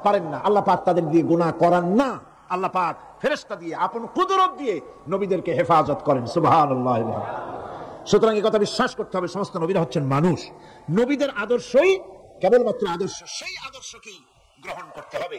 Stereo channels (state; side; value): identical; both; correlation 1.00